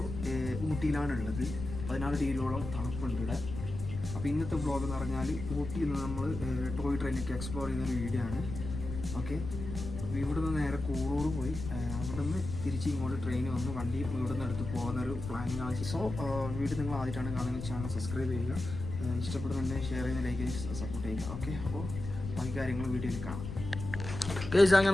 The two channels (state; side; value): noise; left; rumble, 7 dB below the sound